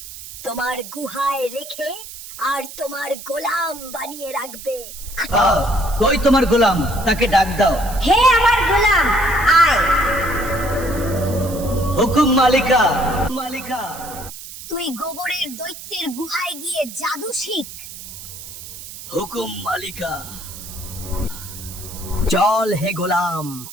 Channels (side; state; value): right; noise; hiss, 13 dB below the sound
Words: তোমার গুহায় রেখে আর তোমার গোলাম বানিয়ে রাখবে। কই তোমার গোলাম? তাকে ডাক দাও। হে আমার গোলাম, আয়। হুকুম মালিকা। মালিকা, তুই গোবরের দৈত্যের গুহায় গিয়ে জাদু শিখ। হুকুম মালিকা। চল হে গোলাম,